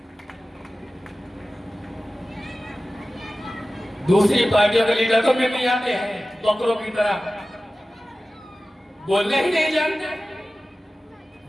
दूसरी पार्टियों के लीडर तो में भी आते हैं बकरों की तरह, बोलने ही नहीं जानते,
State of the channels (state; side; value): normal; both; correlation 0.96